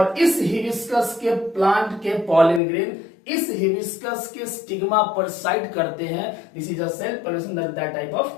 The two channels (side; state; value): right; drops out; at 2.6 s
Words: इस हिबिस्कस के प्लांट के पॉलन ग्रेन इस हिबिस्कस के स्टिग्मा पर साइड करते हैं, this is a self pollination, that type